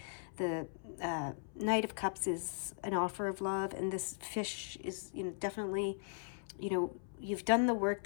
The Knight of Cups is an offer of love, and this fish is, definitely, you've done the work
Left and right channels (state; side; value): silent; right; 52 dB below the other